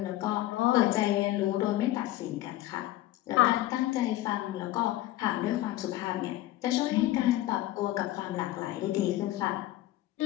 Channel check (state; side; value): quieter; right; 15.6 dB